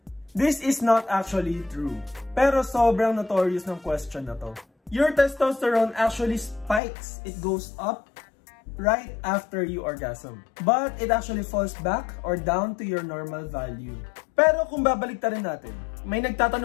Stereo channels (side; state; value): right; drops out; at 6.8 s